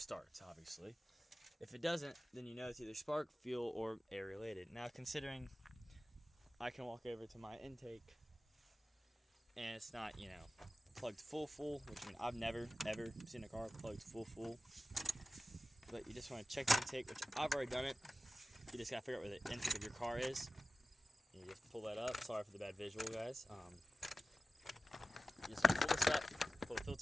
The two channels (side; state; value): both; normal; correlation 0.95